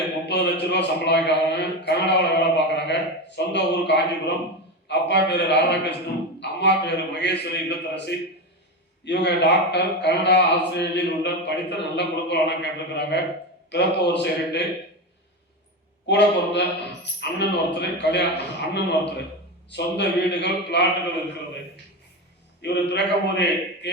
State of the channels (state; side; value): normal; both; correlation 0.18